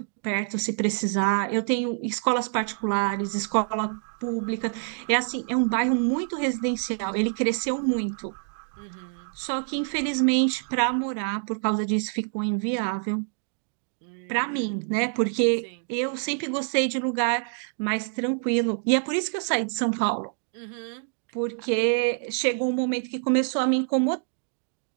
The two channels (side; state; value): left; silent; 61 dB below the other